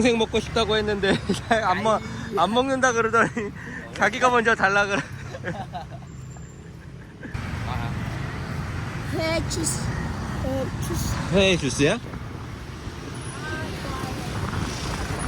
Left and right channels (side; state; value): both; identical; correlation 1.00